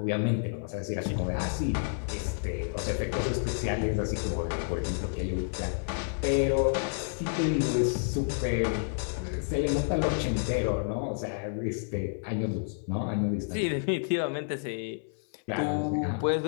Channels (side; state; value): right; silent; 58 dB below the other